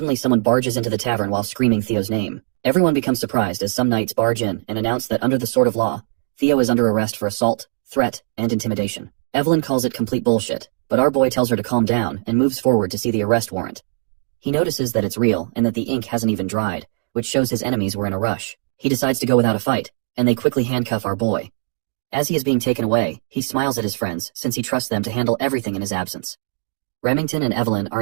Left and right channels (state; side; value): silent; left; digital silence